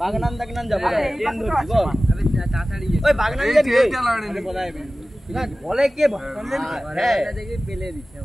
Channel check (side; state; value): both; normal; correlation 0.97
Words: বাগনান দাগনান যাবো ওই বাগনান যাবি বলে কে